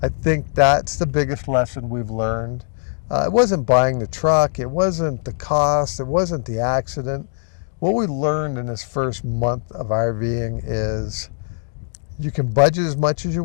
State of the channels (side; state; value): right; silent; digital silence